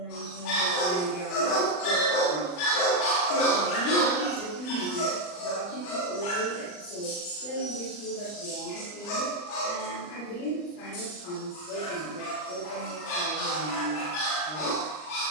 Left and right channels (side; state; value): right; late; 39 ms